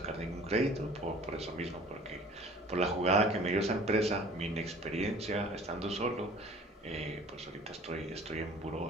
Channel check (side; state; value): both; normal; correlation 0.48